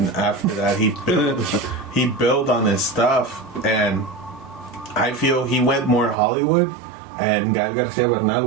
after that he built on his stuff, and I feel he went more Hollywood, and Gael Garcia Bernal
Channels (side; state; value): left; drops out; at 6.2 s